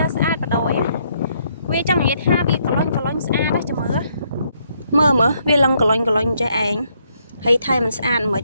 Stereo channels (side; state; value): both; inverted; correlation -0.72